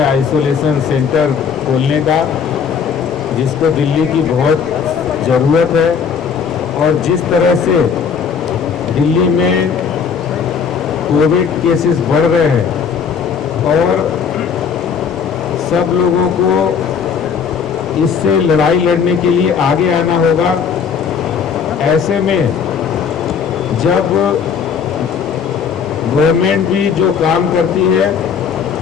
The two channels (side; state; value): right; quieter; 6.7 dB